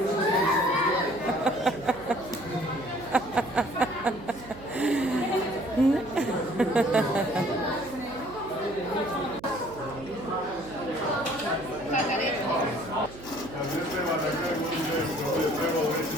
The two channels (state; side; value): noise; right; hum, 17 dB below the sound